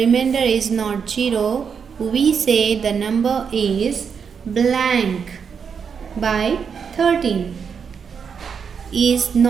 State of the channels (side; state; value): left; quieter; 6.5 dB